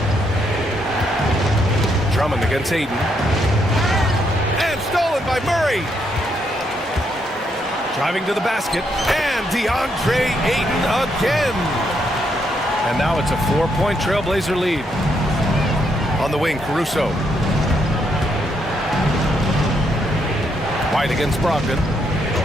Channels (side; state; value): both; normal; correlation 0.76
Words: Drummond against Ayton. And stolen by Murray. Driving to the basket. And DeAndre Ayton again. And now it's a 4-point Trailblazer lead. On the wing, Caruso. White against Brogdon.